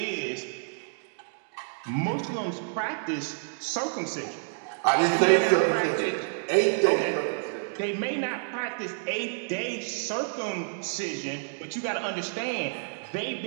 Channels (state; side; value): silent; left; digital silence